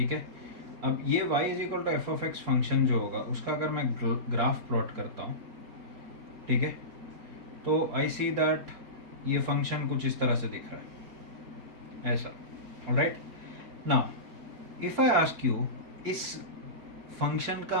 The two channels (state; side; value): late; left; 4.7 ms